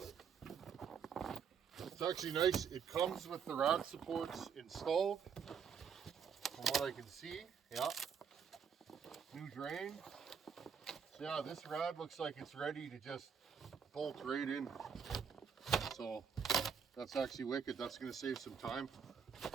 It's actually nice. It comes with the rad supports installed. From what I can see, yeah. New drain. So yeah, this rad looks like it's ready to just bolt right in. So that's actually wicked. That's going to save some time.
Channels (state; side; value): quieter; left; 6.8 dB